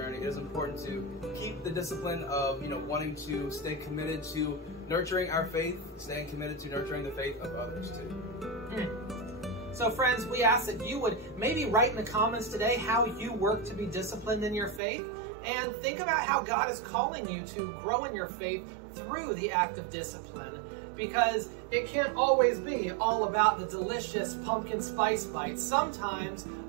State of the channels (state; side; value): drops out; left; at 14.8 s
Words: it is important to keep the discipline of, wanting to stay committed to nurturing our faith, staying committed to nurturing the faith of others too. So friends, we ask that you would maybe write in the comments today how you work to be disciplined in your faith, and think about how God is calling you to grow in your faith through the act of discipline. Because it can't always be all about the delicious pumpkin spice bites. Sometimes